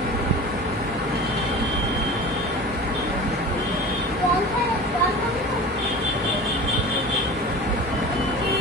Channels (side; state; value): both; normal; correlation 0.36